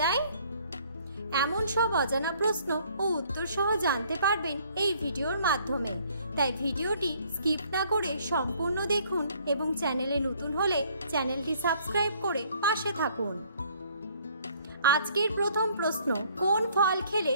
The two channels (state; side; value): inverted; both; correlation -0.61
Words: যায়? এমন সব অজানা প্রশ্ন ও উত্তর সহ জানতে পারবেন এই ভিডিওর মাধ্যমে। তাই ভিডিওটি স্কিপ না করে সম্পূর্ণ দেখুন এবং চ্যানেলে নতুন হলে চ্যানেলটি সাবস্ক্রাইব করে পাশে থাকুন। আজকের প্রথম প্রশ্ন, কোন ফল খেলে